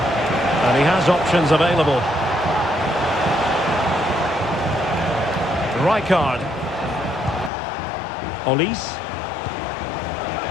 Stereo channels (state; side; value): drops out; right; at 7.5 s